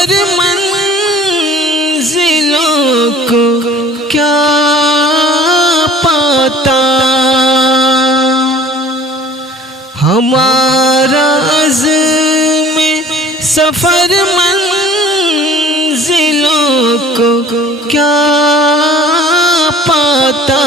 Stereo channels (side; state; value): both; normal; correlation 0.49